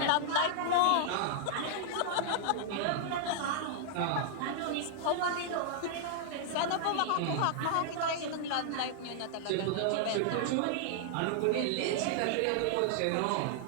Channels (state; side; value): different; both; correlation -0.01